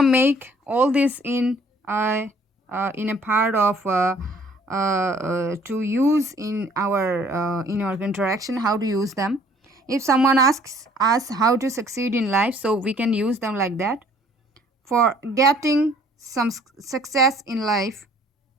make all this in a part of to use in our interaction, how to use them. If someone asks us how to succeed in life, so we can use them like that. For getting some success in life,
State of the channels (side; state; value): both; normal; correlation 0.58